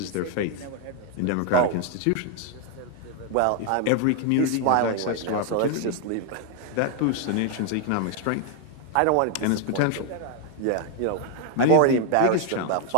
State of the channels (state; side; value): different; both; correlation 0.00